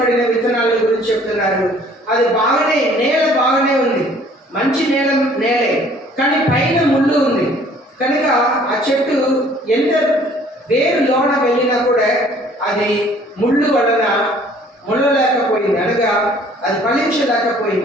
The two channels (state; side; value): normal; both; correlation 0.56